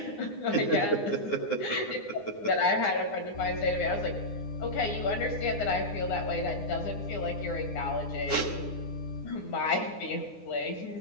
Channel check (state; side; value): late; right; 9.8 ms